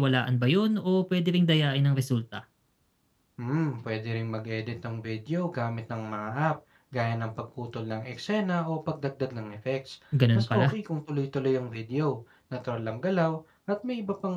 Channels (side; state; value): both; identical; correlation 1.00